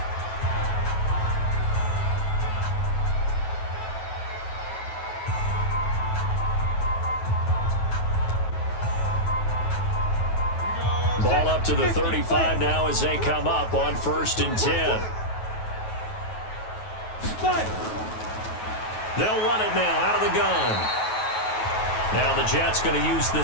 Ball up to the 35 now as they come up on 1st and 10. They'll run it now out of the gun. Now the Jets going to use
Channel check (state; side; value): late; right; 9.2 ms